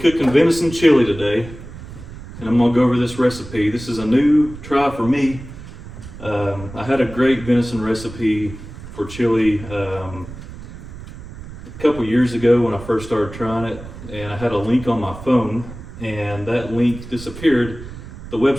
venison chili today, and I'm gonna go over this recipe. This is a new try for me. I had a great venison recipe for chili a couple years ago when I first started trying it, and I had a link on my phone, and that link disappeared. The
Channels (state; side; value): noise; right; rumble, 14 dB below the sound